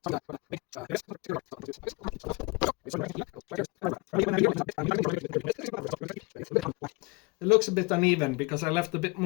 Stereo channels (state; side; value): quieter; right; 25.6 dB